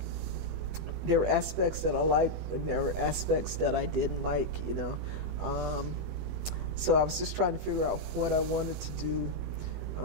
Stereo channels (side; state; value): left; late; 20 ms